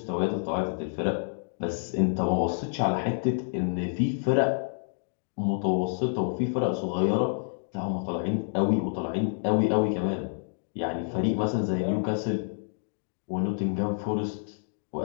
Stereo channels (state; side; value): silent; right; digital silence